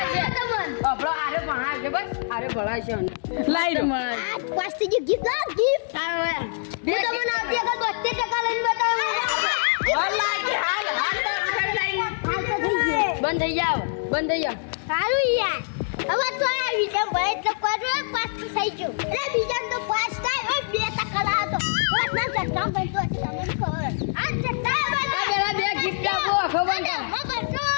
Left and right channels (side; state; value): right; silent; digital silence